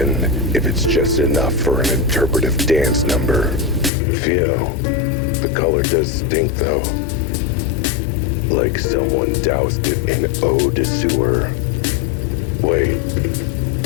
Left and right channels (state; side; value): drops out; right; at 3.9 s